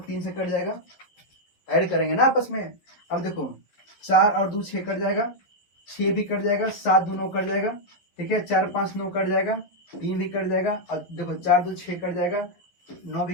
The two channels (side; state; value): right; late; 11 ms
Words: 3 से कट जाएगा, ऐड करेंगे ना आपस में। अब देखो 4 और 2 6 कट जाएगा, 6 भी कट जाएगा, 7 2 9 कट जाएगा, ठीक है, 4 5 9 कट जाएगा, 3 भी कट जाएगा, और देखो 4 2 6 कट जाएगा, 9